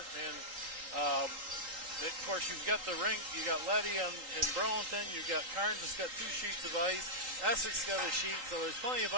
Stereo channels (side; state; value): left; late; 3.8 ms